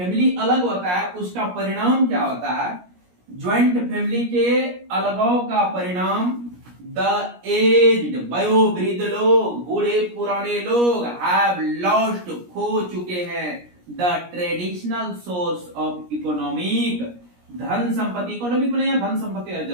अलग होता है, उसका परिणाम क्या होता है? ज्वाइंट फैमिली के अलगाव का परिणाम द एज्ड, वयोवृद्ध लोग, बूढ़े पुराने लोग हैव लॉस्ट, खो चुके हैं the traditional source of economic, धन संपत्ति, इकोनॉमिक को नहीं, धन संपत्ति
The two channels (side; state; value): left; late; 17 ms